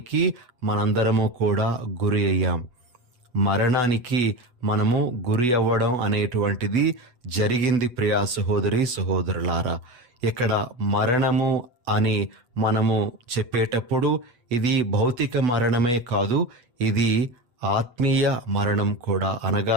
మనందరము కూడా గురి అయ్యాం. మరణానికి మనము గురి అవ్వడం అనేటువంటిది జరిగింది ప్రియా సహోదరి సహోదరులారా. ఇక్కడ మరణము అని మనము చెప్పేటప్పుడు ఇది భౌతిక మరణమే కాదు, ఇది ఆత్మీయ మరణం కూడా.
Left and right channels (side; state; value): left; late; 8.1 ms